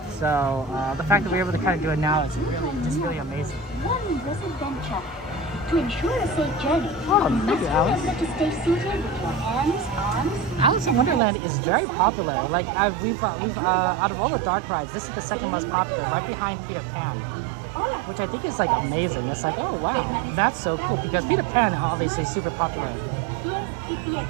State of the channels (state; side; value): drops out; left; at 11.2 s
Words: So the fact that we're able to kind of do it now is really amazing. One adventure. To ensure a safe journey, Oh, you thank must you, Alice. remember to stay seated with your hands, arms, Alice in Wonderland is very popular. Like we've out of all the dark rides, this is the second most popular, right behind Peter Pan, which I think is like amazing. It's like, oh wow, that's so cool because Peter Pan obviously is super popular.